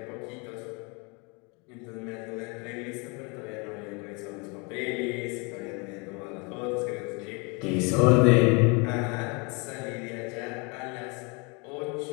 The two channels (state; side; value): quieter; right; 31.1 dB